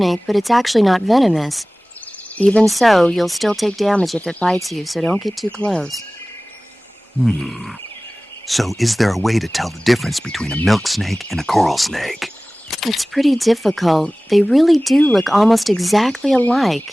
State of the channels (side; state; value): both; normal; correlation 0.98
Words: but it's actually not venomous. Even so, you'll still take damage if it bites you, so don't get too close. So is there a way to tell the difference between a milk snake and a coral snake? It's pretty difficult. They really do look almost exactly